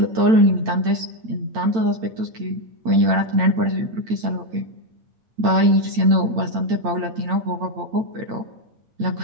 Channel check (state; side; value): late; left; 8.9 ms